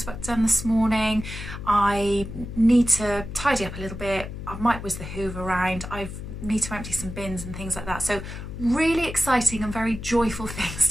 done this morning. I need to tidy up a little bit. I might whiz the hoover around. I need to empty some bins and things like that. So really exciting and very joyful things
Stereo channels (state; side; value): noise; left; hum, 9 dB below the sound